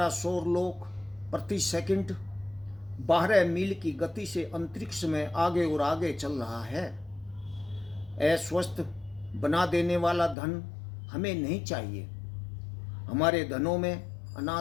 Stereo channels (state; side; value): drops out; right; at 10.4 s